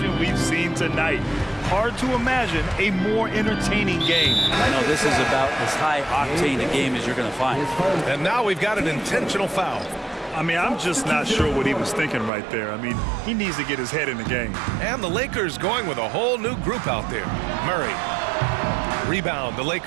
we've seen tonight. Hard to imagine a more entertaining game. No, this is about as high octane a game as you're going to find. And now we've got an intentional foul. I mean, I'm just not sure what he was thinking right there. I mean, he needs to get his head in the game. And the Lakers going with a whole new group out there. Murray. Rebound, the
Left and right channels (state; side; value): drops out; left; at 12.3 s